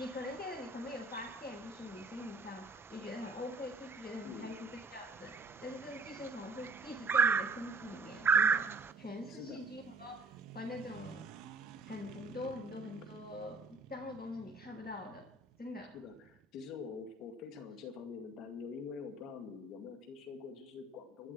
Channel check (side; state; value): left; quieter; 3.3 dB